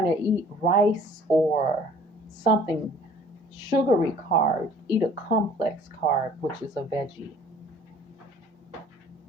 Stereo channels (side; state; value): both; normal; correlation 0.53